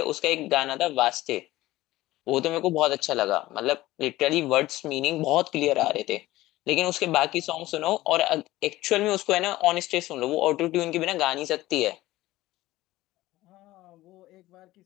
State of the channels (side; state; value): right; quieter; 17.1 dB